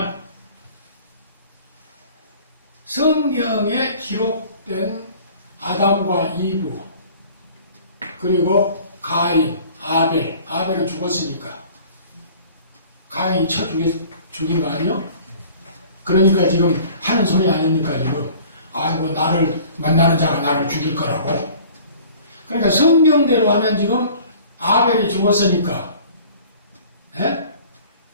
성경에 기록된 아담과 이브 그리고 가인, 아벨은 죽었으니까 가인이 쳐 죽인 거 아니요? 그러니까 지금 하는 소리 아닙니까 지금? 아이고 나를 만나는 자가 나를 죽일 거라고. 그러니까 성경대로 하면 지금 아벨이 죽었으니까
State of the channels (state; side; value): inverted; both; correlation -0.48